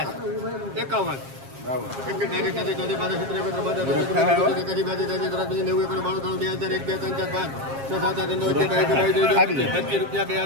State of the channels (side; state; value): left; late; 7.4 ms